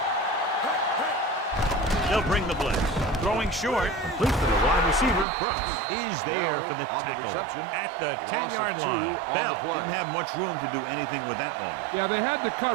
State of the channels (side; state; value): left; drops out; at 5.2 s